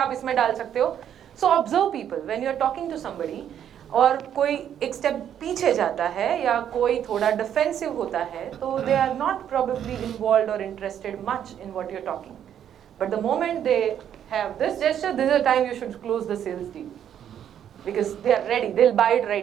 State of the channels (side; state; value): left; quieter; 9.6 dB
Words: इसमें डाल सकते हो. So observe people when you are talking to somebody. और कोई एक स्टेप पीछे जाता है या कोई थोड़ा डिफेंसिव होता है, तो they are not probably involved or interested much in what you're talking. But the moment they have this gesture, this is the time you should close the sales deal. Because they are ready, they'll buy it